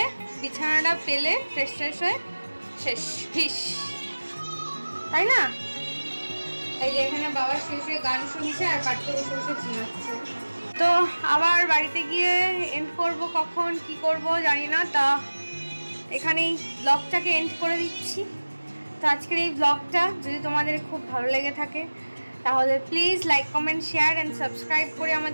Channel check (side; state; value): both; inverted; correlation -1.00